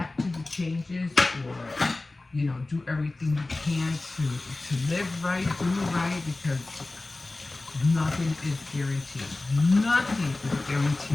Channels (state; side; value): quieter; right; 3.1 dB